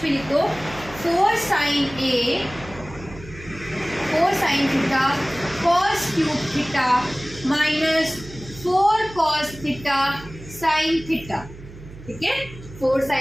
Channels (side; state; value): right; noise; hum, 17 dB below the sound